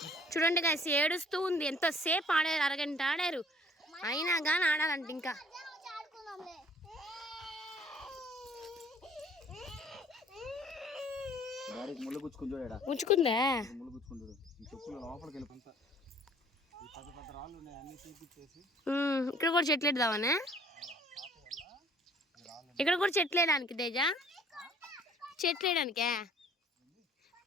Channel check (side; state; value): both; normal; correlation 0.55